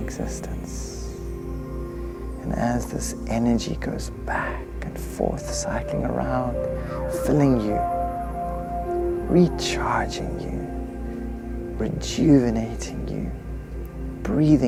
And as this energy goes back and forth, cycling around, filling you, recharging you, rejuvenating you,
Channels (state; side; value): identical; both; correlation 1.00